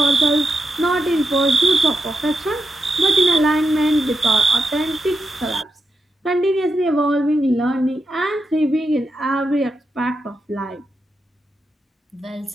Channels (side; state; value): both; normal; correlation 0.87